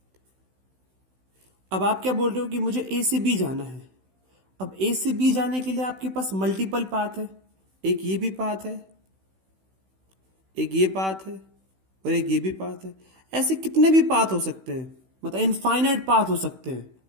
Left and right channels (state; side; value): late; left; 16 ms